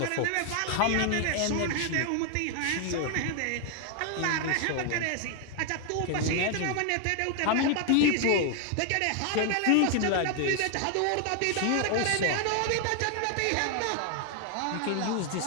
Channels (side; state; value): both; different; correlation 0.00